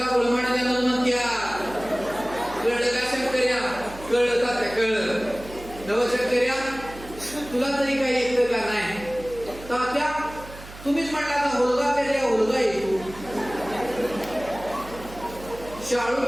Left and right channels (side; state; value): right; noise; hum, 16 dB below the sound